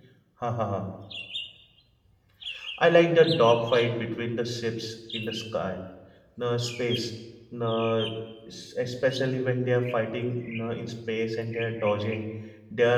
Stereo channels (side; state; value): both; identical; correlation 1.00